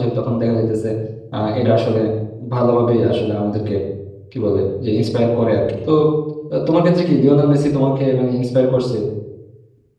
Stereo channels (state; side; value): identical; both; correlation 1.00